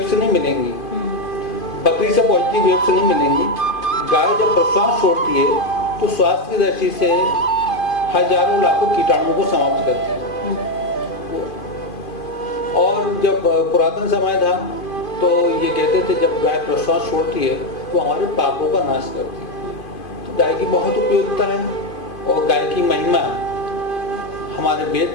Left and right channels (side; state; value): right; late; 2.5 ms